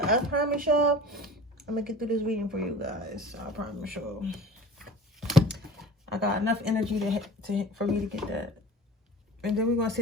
I promise y'all I'm gonna get through this reading for you guys. I promise y'all I got enough energy for me to get that. And then we're gonna see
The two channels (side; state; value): both; normal; correlation 0.41